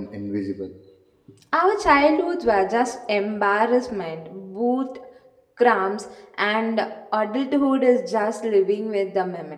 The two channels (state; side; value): identical; both; correlation 1.00